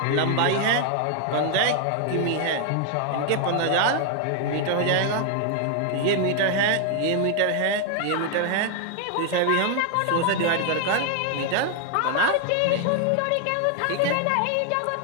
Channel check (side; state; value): both; different; correlation 0.00